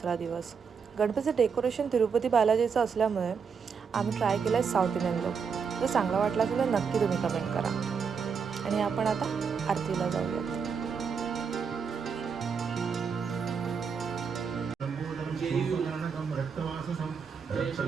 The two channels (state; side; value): quieter; left; 6.1 dB